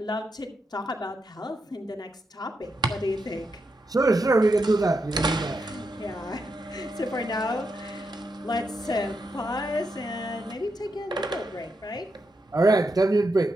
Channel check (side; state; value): both; normal; correlation 0.83